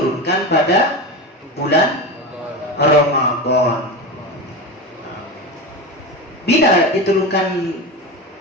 pada bulan Ramadan. Bila diturunkan,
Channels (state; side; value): normal; both; correlation 0.22